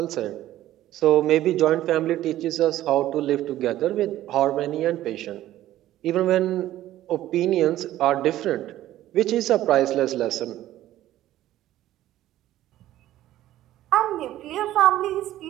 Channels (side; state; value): left; quieter; 13.9 dB